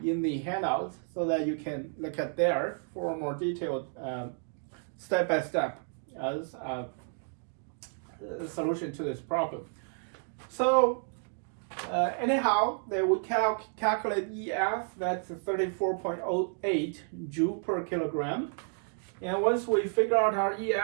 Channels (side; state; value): left; silent; 57 dB below the other